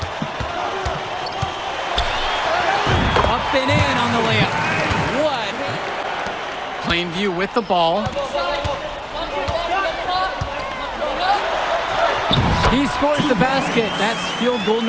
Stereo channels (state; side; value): identical; both; correlation 1.00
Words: Up and in on the layup. What? Plainview with the ball. He scores the basket. That's field goal